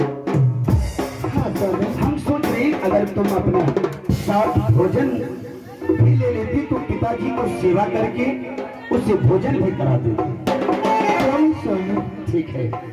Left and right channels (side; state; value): both; identical; correlation 1.00